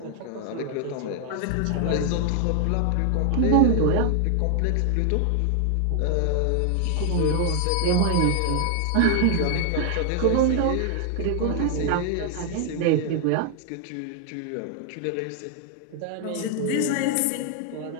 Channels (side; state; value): both; different; correlation 0.00